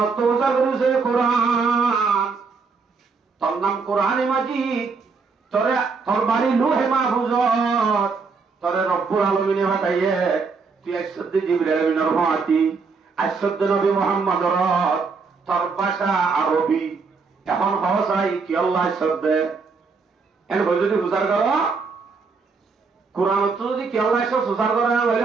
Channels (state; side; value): quieter; left; 4.8 dB